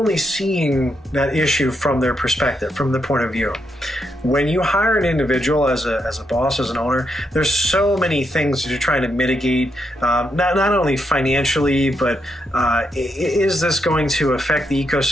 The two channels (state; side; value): normal; both; correlation 0.80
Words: seeing that issue from their perspective, from the point of view. When you hire an individual as a boss, as an owner, there's so many things that you're trying to mitigate, not only financially, but is this going to affect the